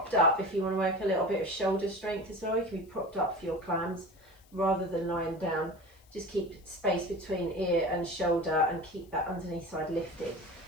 up if you want to work a little bit of shoulder strength as well. You can be propped up for your clams rather than lying down. Just keep space between ear and shoulder and keep that underneath side lifted.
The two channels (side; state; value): left; noise; hiss, 30 dB below the sound